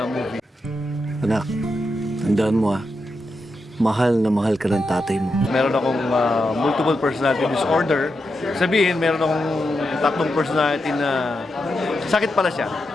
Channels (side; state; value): both; normal; correlation 0.86